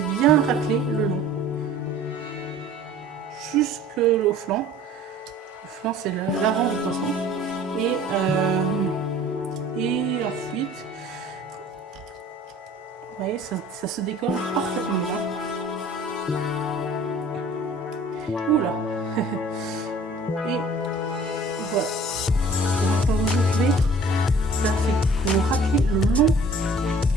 bien racler le long. Jusqu'au flanc. Le flanc, c'est l'avant du poisson. Et ensuite, vous voyez, ça se décolle parfaitement bien. Oula. Et voilà. Et maintenant, vous ouvrez. Ça fait que vous raclez le long.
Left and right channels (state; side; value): normal; both; correlation 0.49